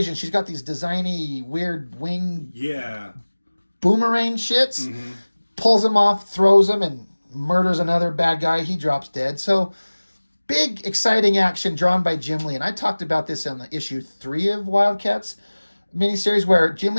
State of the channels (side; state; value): both; inverted; correlation -1.00